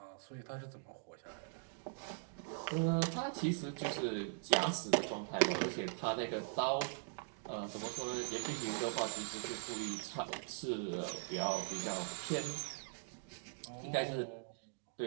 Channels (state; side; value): silent; left; digital silence